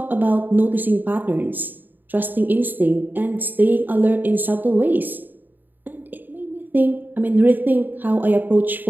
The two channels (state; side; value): late; left; 0.090 ms